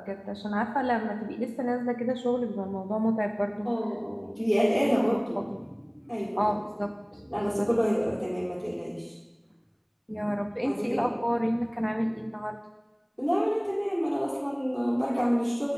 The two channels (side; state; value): both; identical; correlation 1.00